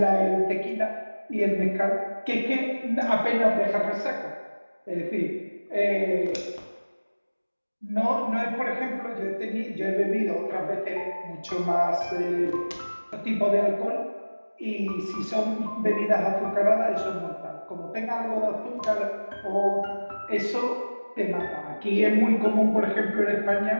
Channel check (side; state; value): both; inverted; correlation -1.00